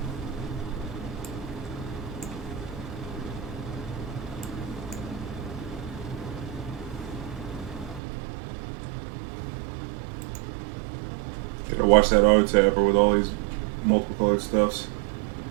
Gotta watch that auto tapper with all these multiple colored stuffs.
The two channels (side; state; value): left; drops out; at 8.0 s